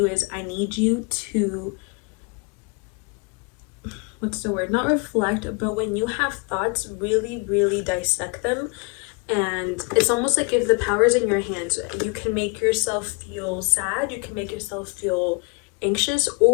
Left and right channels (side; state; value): right; quieter; 31.4 dB